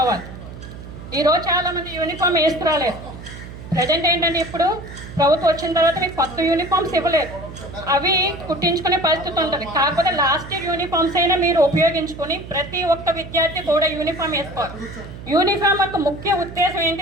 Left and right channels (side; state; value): right; noise; hum, 13 dB below the sound